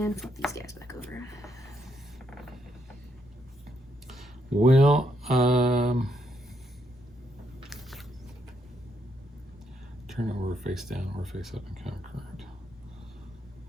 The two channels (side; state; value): both; normal; correlation 0.77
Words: flip these guys back over. Well, turn over face down or face up and count card.